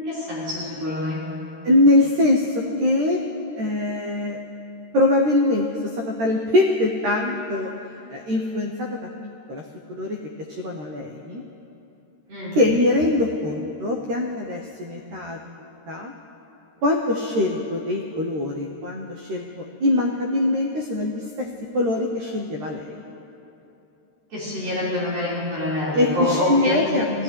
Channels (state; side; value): late; left; 13 ms